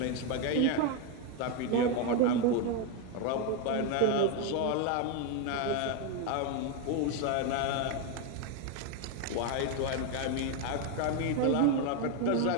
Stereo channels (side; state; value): both; different; correlation 0.02